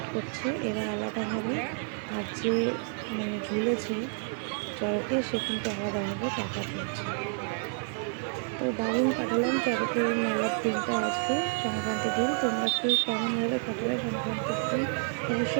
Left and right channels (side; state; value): left; silent; 58 dB below the other